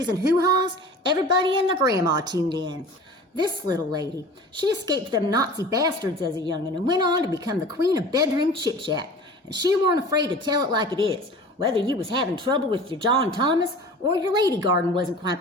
and hoo-haws, everybody and their grandma tuned in. This little lady, she escaped them Nazi bastards as a young'un and went on to become the queen of bedroom chit-chat. And she weren't afraid to tell it like it is, whether you was having trouble with your John Thomas or your lady garden wasn't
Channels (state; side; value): normal; both; correlation 0.40